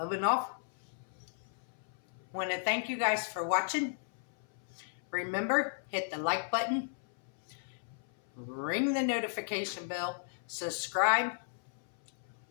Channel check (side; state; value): right; silent; 55 dB below the other